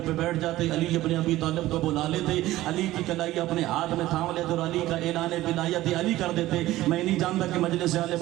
پہ بیٹھ جاتے، علی ابن ابی طالب کو بلا لیتے، علی کی کلائی اپنے ہاتھ میں تھام لیتے اور علی کا اعلان ولایت علی کر دیتے۔ میں نہیں جانتا کہ مجلس آل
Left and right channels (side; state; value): left; quieter; 16.0 dB